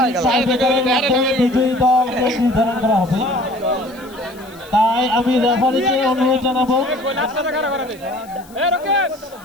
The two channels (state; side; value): noise; left; hiss, 25 dB below the sound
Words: টাইব্রেকারের মাধ্যমে বিজয়ী দলকে নির্ধারণ করা হবে। তাই আমি রেফারিকে অনুরোধ জানাবো